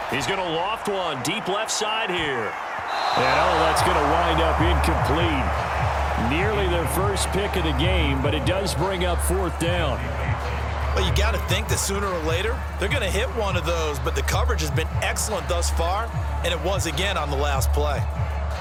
He's going to loft one deep left side here. And that's going to wind up incomplete. Nearly their first pick of the game, but it does bring up 4th down. Well, you got to think that sooner or later they're going to hit one of those, but the coverage has been excellent thus far, and it was again on the last play.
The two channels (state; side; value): identical; both; correlation 1.00